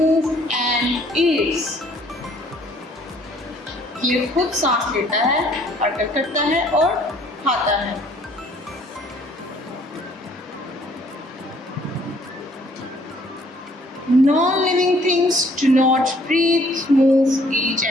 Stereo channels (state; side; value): normal; both; correlation 0.61